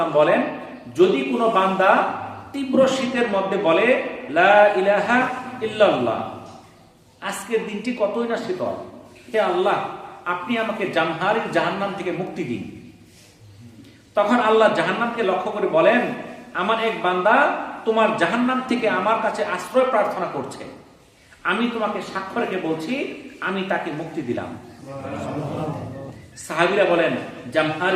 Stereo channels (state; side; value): identical; both; correlation 1.00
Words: বলেন, যদি কোনো বান্দা তীব্র শীতের মধ্যে বলে লা ইলাহা ইল্লাল্লাহ, আজকের দিনটি কতই না শীতল, হে আল্লাহ আপনি আমাকে জামহারির জাহান্নাম থেকে মুক্তি দিন। তখন আল্লাহ জাহান্নামকে লক্ষ্য করে বলেন, আমার এক বান্দা তোমার জাহান্নাম থেকে আমার কাছে আশ্রয় প্রার্থনা করছে, আমি তোমাকে সাক্ষ্য রেখে বলছি আমি তাকে মুক্তি দিলাম। সাহাবীরা বলেন,